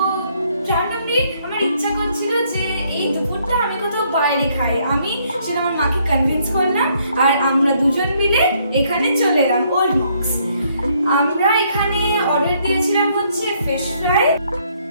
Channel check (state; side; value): inverted; both; correlation -0.68